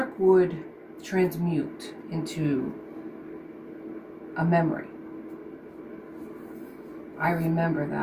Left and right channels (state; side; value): identical; both; correlation 1.00